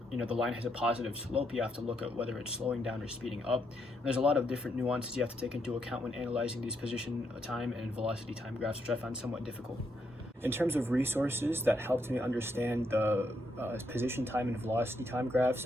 the line has a positive slope, you have to look at whether it's slowing down or speeding up. And there's a lot of different nuances you have to take into account when analyzing these position time and velocity time graphs, which I found somewhat difficult. In terms of resources that helped me understand the position time and velocity time graphs,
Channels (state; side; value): normal; both; correlation 0.78